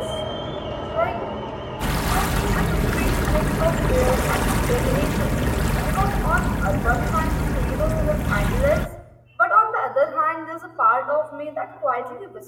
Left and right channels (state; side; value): identical; both; correlation 1.00